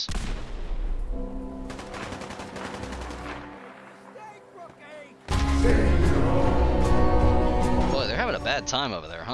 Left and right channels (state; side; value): identical; both; correlation 1.00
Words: Boy, they're having a bad time over there,